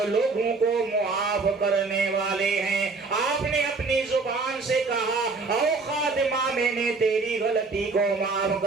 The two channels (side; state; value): left; quieter; 4.0 dB